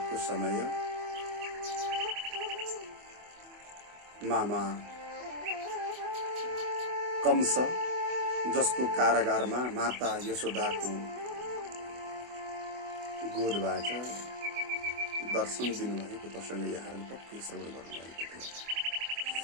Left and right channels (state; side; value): late; left; 24 ms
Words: समय मामा कंस, जसको कारागारमा माता यशोदाको गोदबाट दर्शन दिनुभएको प्रसङ्ग यहाँहरूले पक्कै श्रवण गर्नुभएको